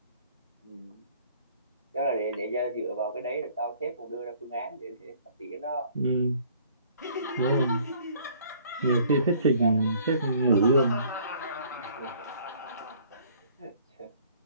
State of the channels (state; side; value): inverted; both; correlation -0.57